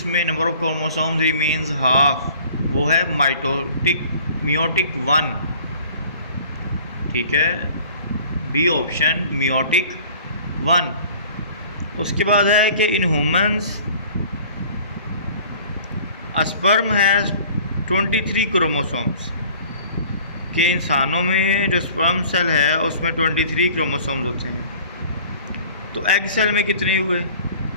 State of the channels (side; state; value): both; inverted; correlation -0.49